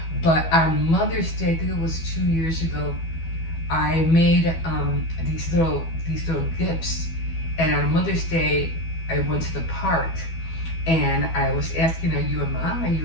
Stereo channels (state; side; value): late; right; 12 ms